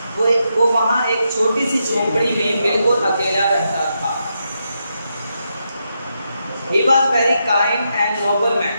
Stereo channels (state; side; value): inverted; both; correlation -0.83